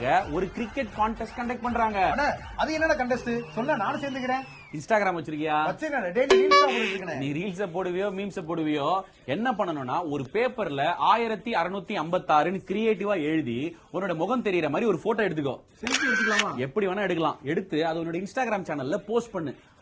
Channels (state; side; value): identical; both; correlation 1.00